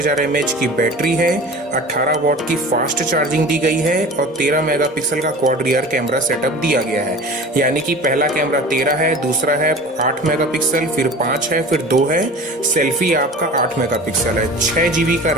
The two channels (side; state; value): both; normal; correlation 0.38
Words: mAh की बैटरी है, 18 वॉट की फास्ट चार्जिंग दी गई है और 13 मेगापिक्सल का क्वाड रियर कैमरा सेटअप दिया गया है। यानी कि पहला कैमरा 13 है, दूसरा है 8 मेगापिक्सल, फिर 5 है, फिर 2 है, सेल्फी आपका 8 मेगापिक्सल है। 6 GB का